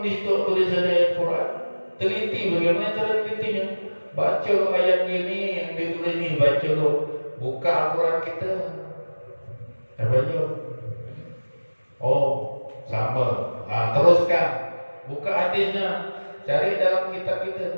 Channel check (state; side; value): inverted; both; correlation -1.00